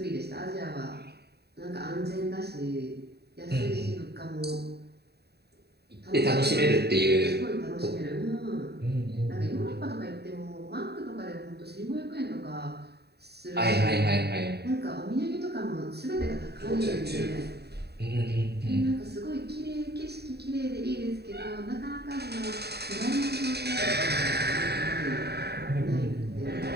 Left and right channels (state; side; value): late; left; 0.48 ms